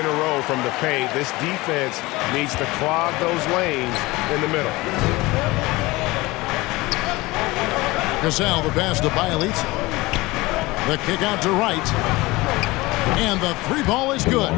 a row from the paint. This defense needs to clog those lanes in the middle. Cassell, the pass to Bielitsa. The kick out to Wright. And the three ball is good.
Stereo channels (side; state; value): right; quieter; 21.2 dB